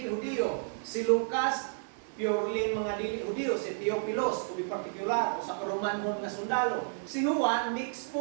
Hudyo. Si Lucas, purely mga dili Hudyo. Si Theophilus, to be particular, o sa Romanhon nga sundalo. Si Juan, mix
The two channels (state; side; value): silent; left; digital silence